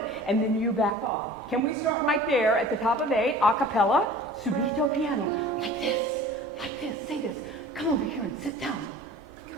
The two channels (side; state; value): both; normal; correlation 0.43